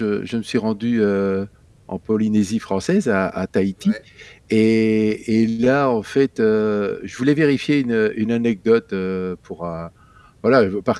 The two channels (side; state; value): both; identical; correlation 1.00